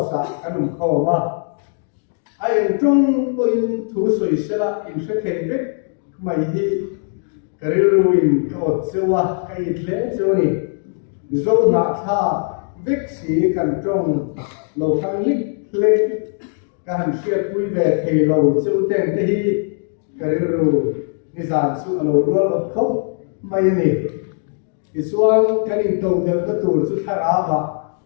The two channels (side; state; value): right; silent; 57 dB below the other